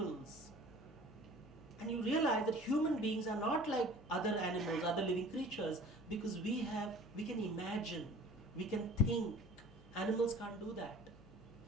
And you realize that human beings are not like other animals, other living creatures, because we can imagine, we can think. Animals can't do that.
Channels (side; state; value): both; normal; correlation 0.45